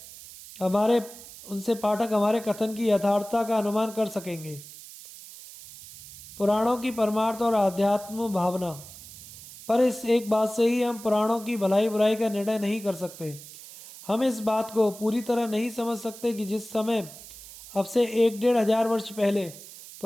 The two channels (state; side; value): noise; right; hiss, 16 dB below the sound